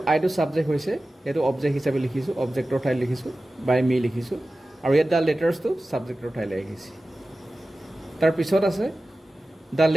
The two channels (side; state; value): both; normal; correlation 0.96